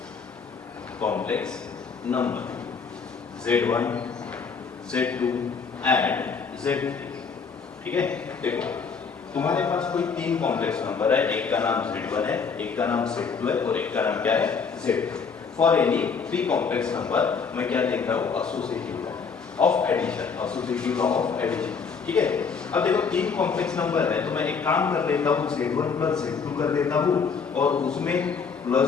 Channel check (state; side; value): quieter; right; 5.6 dB